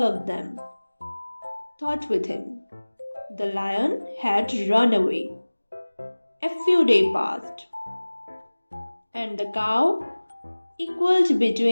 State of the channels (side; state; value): both; inverted; correlation -1.00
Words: of them thought with him. The lion had run away. A few days passed, and the cow equaled